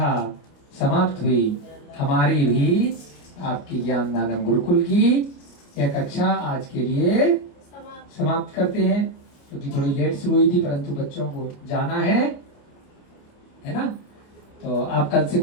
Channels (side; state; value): right; late; 28 ms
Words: समाप्त हुई। हमारी भी आपकी ज्ञानदानम गुरुकुल की यह कक्षा आज के लिए समाप्त करते हैं, क्योंकि थोड़ी लेट शुरू हुई थी, परंतु बच्चों को जाना है ना। तो आप कल से